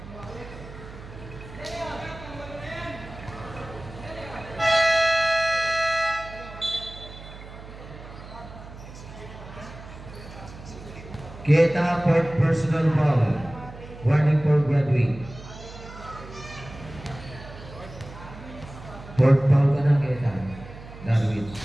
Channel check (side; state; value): right; noise; hum, 15 dB below the sound